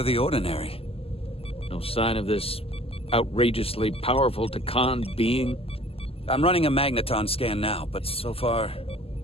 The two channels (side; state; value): right; late; 0.28 ms